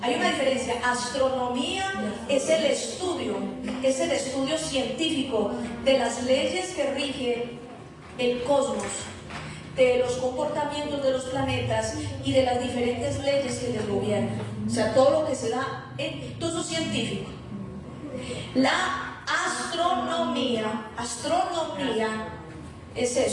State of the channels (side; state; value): both; identical; correlation 1.00